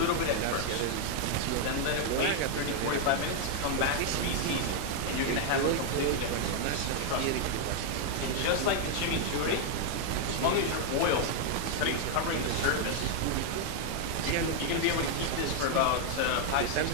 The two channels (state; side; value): different; both; correlation 0.00